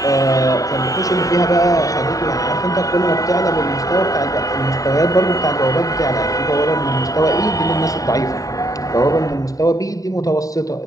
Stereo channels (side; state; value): right; late; 0.17 ms